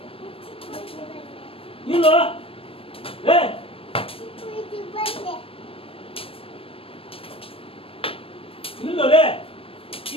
ಇಲ್ಲ ಏ ಇಲ್ಲಲೇ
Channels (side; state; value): right; late; 0.27 ms